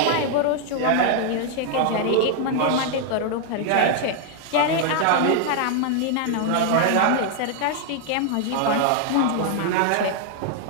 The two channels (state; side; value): different; both; correlation 0.00